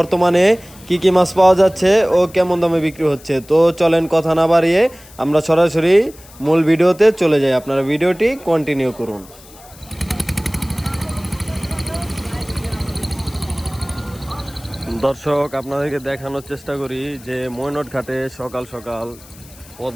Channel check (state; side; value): noise; left; hiss, 22 dB below the sound